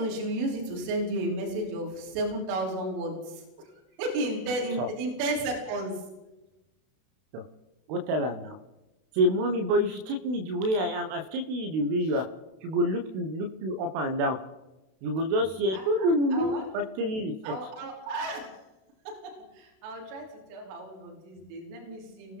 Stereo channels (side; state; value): left; late; 32 ms